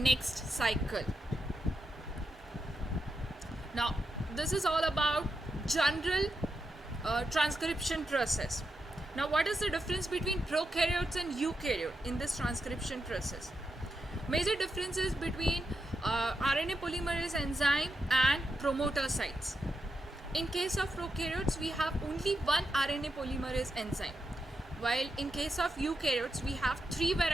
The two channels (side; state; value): both; normal; correlation 0.86